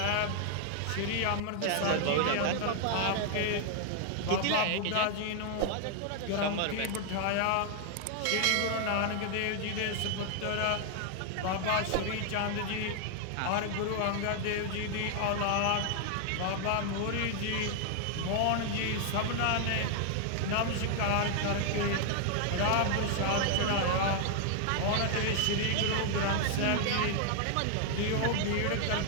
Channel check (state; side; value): different; both; correlation 0.00